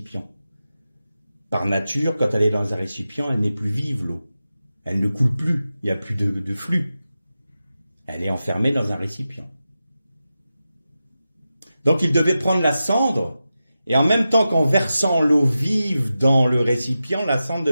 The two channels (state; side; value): inverted; both; correlation -0.92